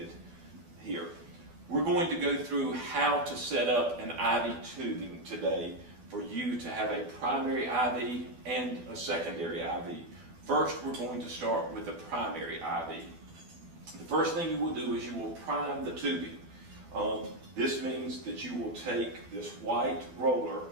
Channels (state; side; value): late; left; 12 ms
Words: here. We're going to go through how to set up an IV tubing today for you to have a primary IV and a secondary IV. First, we're going to start with the primary IV. The first thing you will do is you will prime the tubing. This means that you will take this white roller